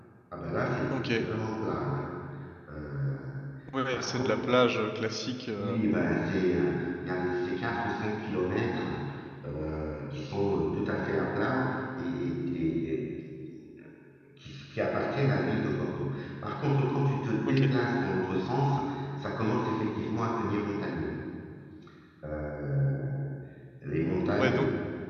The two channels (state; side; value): identical; both; correlation 1.00